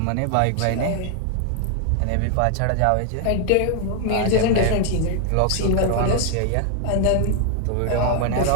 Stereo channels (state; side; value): different; both; correlation 0.00